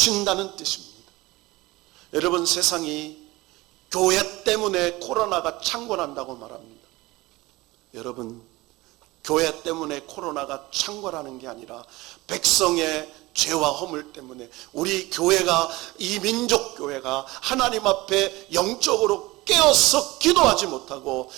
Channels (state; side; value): quieter; left; 20.5 dB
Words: 뜻입니다. 여러분, 세상이 교회 때문에 코로나가 창궐한다고 말합니다. 여러분, 교회 때문에 코로나가 창궐하는 게 아니라 백성의 죄와 허물 때문에 우리 교회가, 이 민족교회가 하나님 앞에 영적으로 깨어서 기도하지 못하고